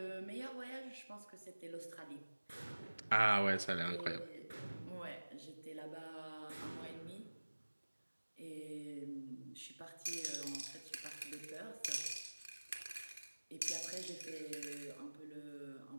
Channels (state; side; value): inverted; both; correlation -1.00